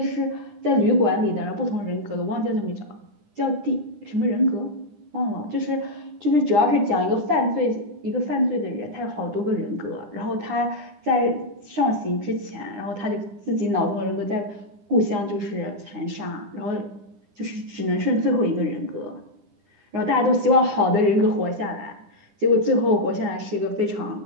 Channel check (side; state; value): left; late; 9.9 ms